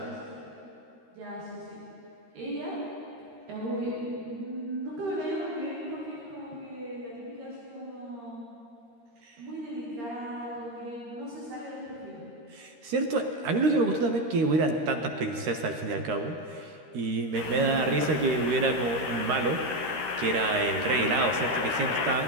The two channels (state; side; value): late; left; 13 ms